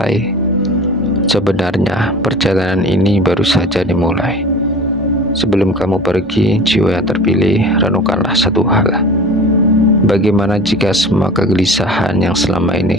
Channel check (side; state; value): both; normal; correlation 0.39